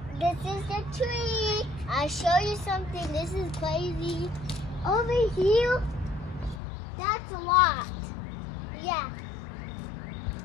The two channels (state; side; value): drops out; right; at 6.6 s